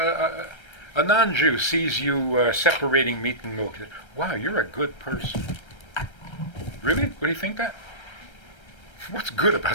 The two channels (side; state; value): right; late; 1.3 ms